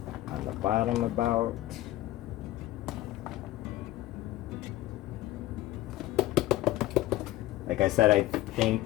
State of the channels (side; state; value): right; quieter; 15.9 dB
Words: On the bottom about. Like I said, I